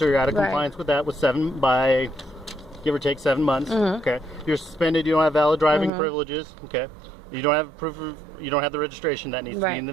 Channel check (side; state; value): left; drops out; at 5.9 s